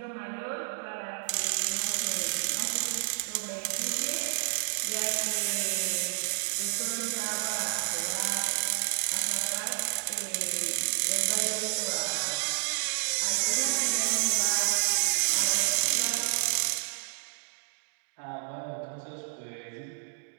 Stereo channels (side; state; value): left; silent; digital silence